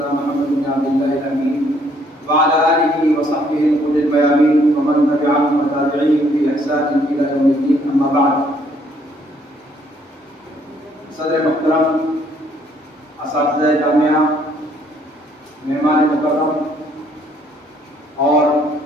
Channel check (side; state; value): both; normal; correlation 0.66